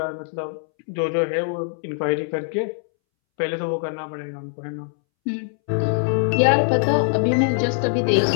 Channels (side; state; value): right; silent; 64 dB below the other